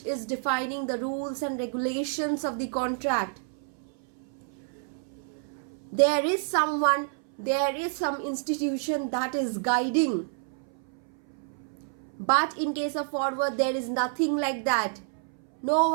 is defining the rules and regulations of the contract. There is someone, there is some institution that is guiding. But in case of forward, there is nothing like that. No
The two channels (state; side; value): silent; left; 59 dB below the other